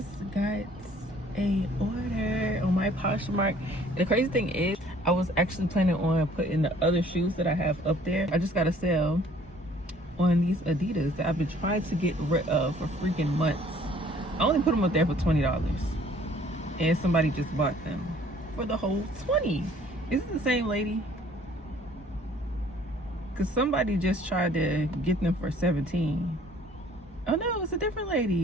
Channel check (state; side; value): normal; both; correlation 0.57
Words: got a order on my Poshmark. And the crazy thing is, I was actually planning on putting the other shoes that I have up there. I just got a sale on these Adidas that I've been trying to get rid of for freaking months. I only put them up there for $20, and somebody just bought them for the whole $20. Is it the same lady? Because somebody just tried to get them for $17. Oh no, it's a different